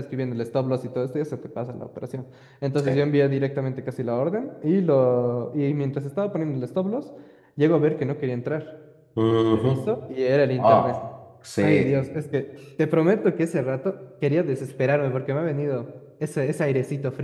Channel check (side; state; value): both; identical; correlation 1.00